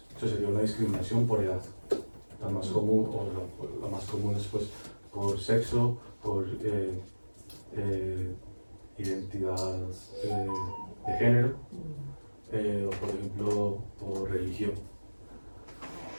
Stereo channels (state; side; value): inverted; both; correlation -1.00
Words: Eso sería una discriminación por edad. La más común, o la más común es pues por sexo, por identidad de género, o por ejemplo por religión.